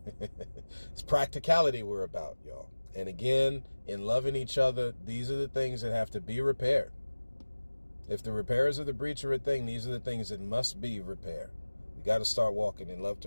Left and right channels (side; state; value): both; inverted; correlation -1.00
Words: practicality we're about, y'all. And again, in loving each other, these are the things that have to be repaired. If the repairs of the breach are a thing, these are the things that must be repaired. We got to start walking in love